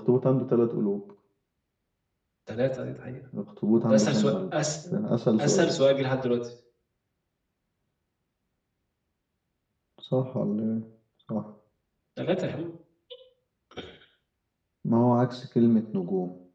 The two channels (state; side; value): identical; both; correlation 1.00